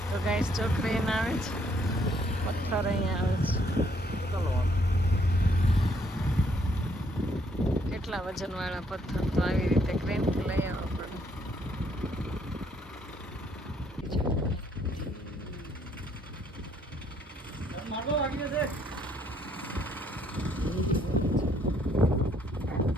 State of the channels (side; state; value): both; normal; correlation 0.68